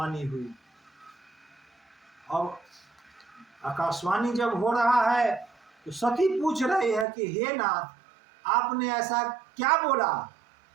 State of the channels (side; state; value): left; drops out; at 7.1 s